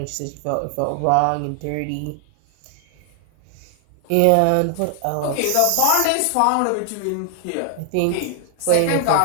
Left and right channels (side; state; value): both; different; correlation 0.00